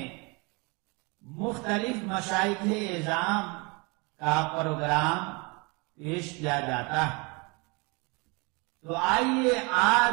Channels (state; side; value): quieter; left; 29.2 dB